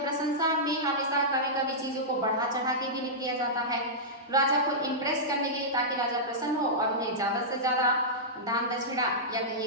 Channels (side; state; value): both; normal; correlation -0.13